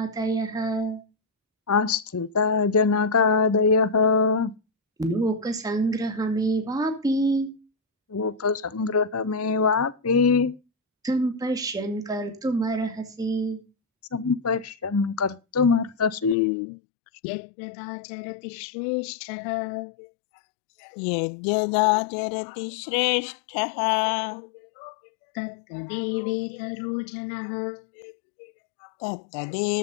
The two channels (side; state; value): right; drops out; at 16.4 s